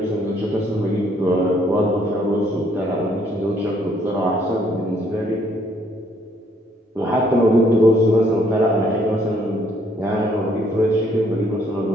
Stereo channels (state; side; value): normal; both; correlation 0.66